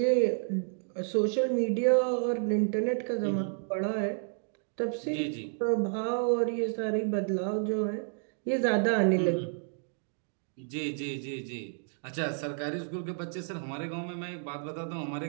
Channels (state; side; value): silent; left; 57 dB below the other